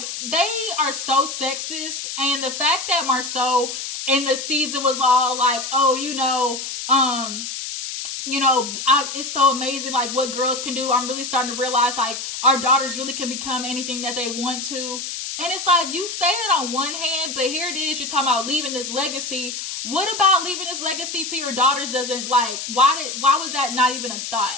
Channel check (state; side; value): noise; left; hiss, 6 dB below the sound